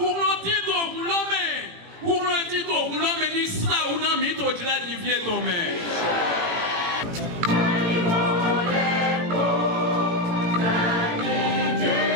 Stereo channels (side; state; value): left; late; 18 ms